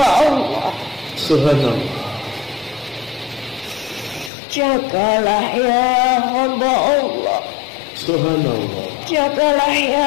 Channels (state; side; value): drops out; right; at 4.3 s